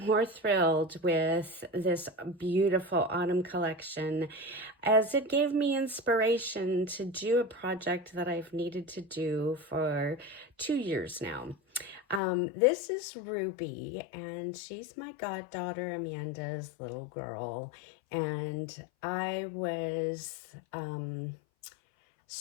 thrilled with this beautiful autumn collection, as it gave me inspiration to do a project that I've needed to do for 2 years now. This is Ruby, and she's my goddaughter Amanda's little girl. And I was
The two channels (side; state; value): right; drops out; at 12.2 s